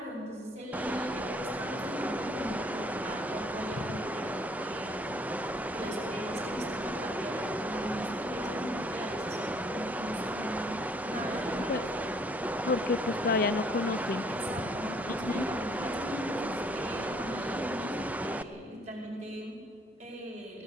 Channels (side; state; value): both; normal; correlation 0.61